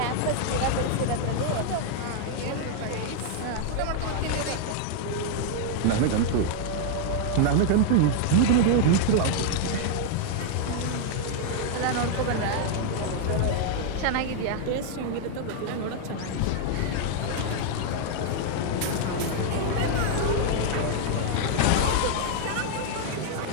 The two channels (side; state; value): both; different; correlation 0.00